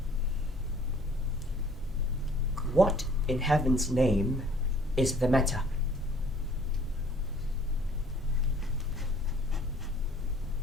What in heaven's name is the matter?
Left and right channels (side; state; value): both; normal; correlation 0.56